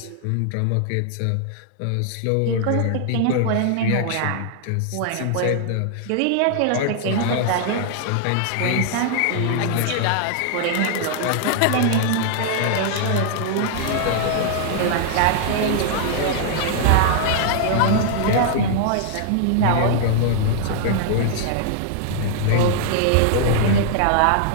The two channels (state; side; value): different; both; correlation -0.01